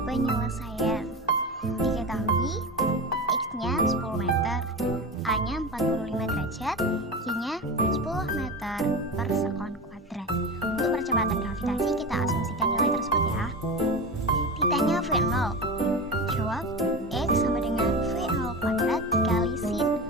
Penyelesaian. Diketahui X-nya 10 meter, A-nya 45 derajat, Y-nya 10 meter per sekon kuadrat. Untuk percepatan gravitasi kita asumsikan nilai tersebut ya. Ditanya V0. Jawab X sama dengan V0 kuadrat dikali sin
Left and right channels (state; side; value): normal; both; correlation 0.25